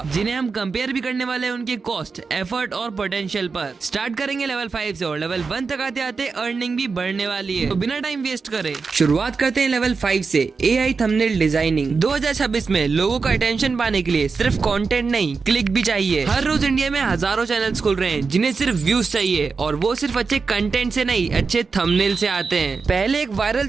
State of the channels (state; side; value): quieter; left; 4.8 dB